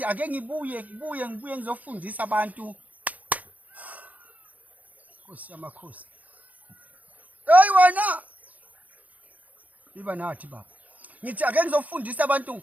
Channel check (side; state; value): left; late; 0.077 ms